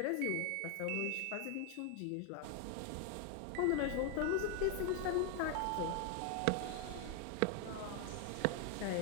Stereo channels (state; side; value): different; both; correlation 0.00